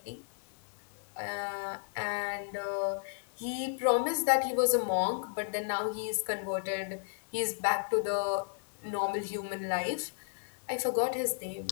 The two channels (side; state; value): right; silent; digital silence